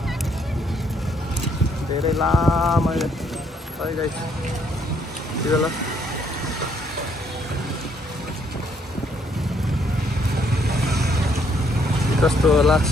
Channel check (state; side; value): normal; both; correlation 0.69